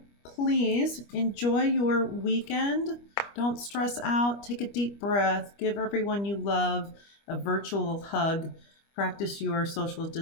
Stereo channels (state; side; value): late; right; 25 ms